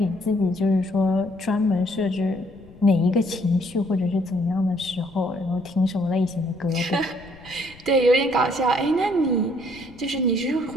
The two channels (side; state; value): left; noise; rumble, 23 dB below the sound